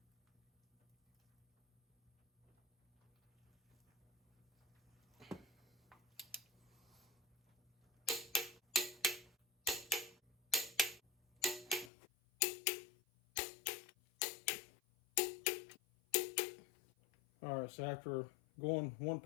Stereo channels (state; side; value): drops out; right; at 11.9 s